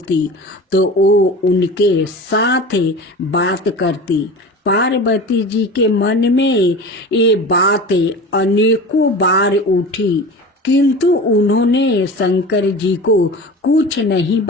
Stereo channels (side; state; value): both; normal; correlation 0.34